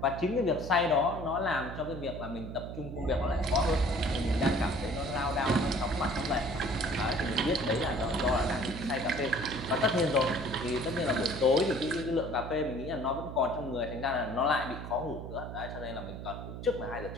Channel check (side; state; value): right; noise; hum, 9 dB below the sound